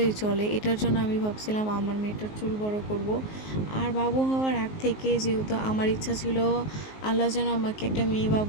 চলে। এটার জন্য আমি ভাবছিলাম আমার মেয়েটার চুল বড় করব। আর বাবু হওয়ার আগ থেকে যেহেতু আমার ইচ্ছা ছিল আল্লাহ যেন আমাকে একটা মেয়ে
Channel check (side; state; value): right; late; 19 ms